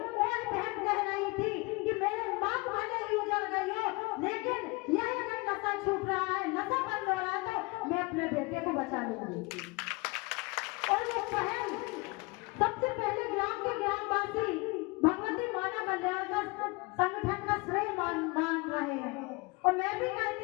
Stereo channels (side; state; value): right; quieter; 26.3 dB